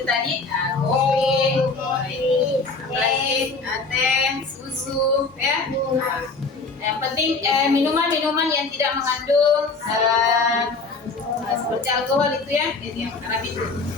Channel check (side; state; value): right; quieter; 4.0 dB